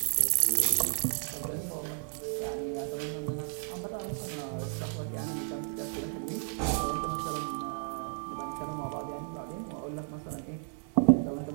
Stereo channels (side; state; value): left; silent; 56 dB below the other